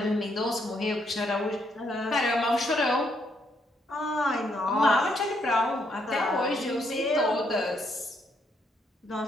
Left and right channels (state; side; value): normal; both; correlation 0.74